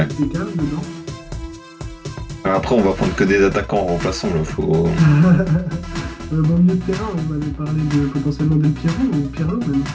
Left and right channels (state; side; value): identical; both; correlation 1.00